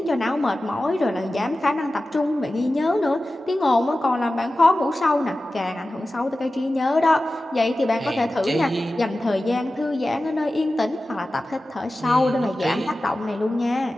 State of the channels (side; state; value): both; normal; correlation 0.95